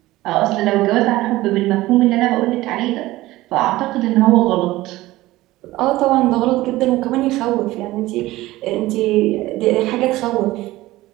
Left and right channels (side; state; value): left; quieter; 17.6 dB